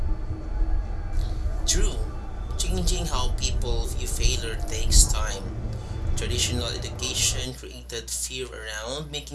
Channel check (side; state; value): both; identical; correlation 1.00